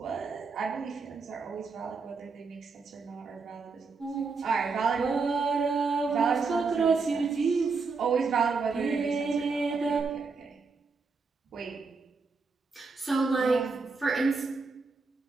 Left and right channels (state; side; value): quieter; left; 4.5 dB